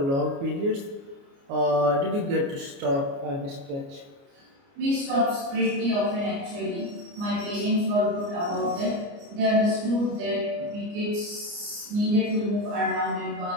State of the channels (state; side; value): late; left; 29 ms